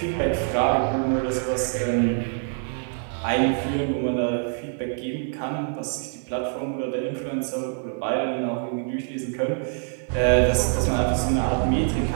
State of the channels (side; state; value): left; silent; 61 dB below the other